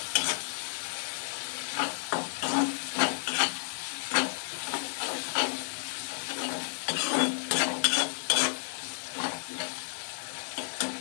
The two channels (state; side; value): silent; right; 57 dB below the other